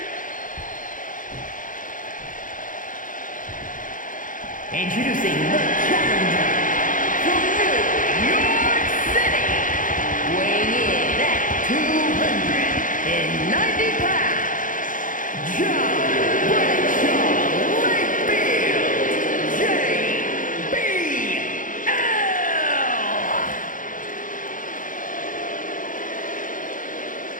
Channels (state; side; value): late; right; 0.38 ms